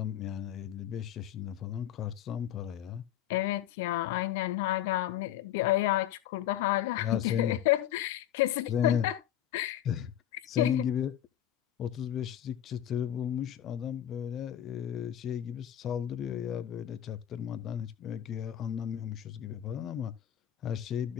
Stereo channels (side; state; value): right; quieter; 11.2 dB